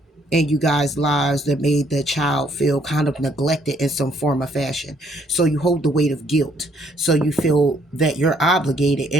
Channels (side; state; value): both; normal; correlation 0.67